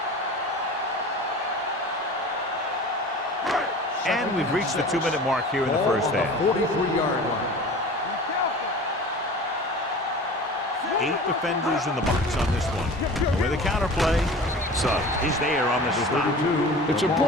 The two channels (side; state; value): both; normal; correlation 0.39